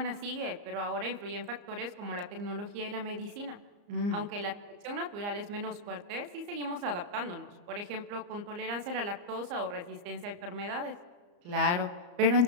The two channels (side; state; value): left; late; 34 ms